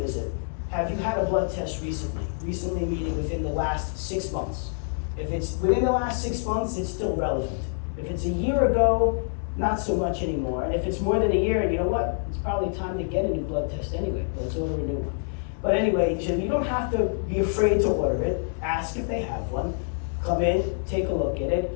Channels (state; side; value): silent; right; 57 dB below the other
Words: Have you had a blood test recently? Recently meaning within the last 6 months. If it's within the last 6 months, it's still relevant. If it's a year ago, not so much anymore. And if it's more than a year, you know what? It's probably time to get a new blood test anyway. Let's order a new one. But anyway, you don't have to be afraid to order it. Ask if they have one. Come in, take a look at it,